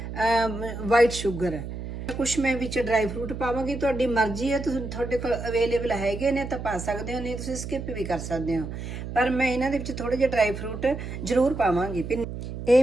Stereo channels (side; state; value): right; noise; hum, 7 dB below the sound